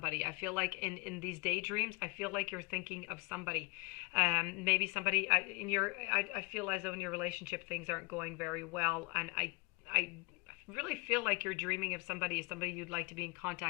I feel like in these daydreams, I feel like you're thinking of somebody. Maybe somebody I feel as though in your relationship things aren't going very well, and I really feel like you're dreaming of somebody you'd like to be in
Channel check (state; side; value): quieter; right; 26.4 dB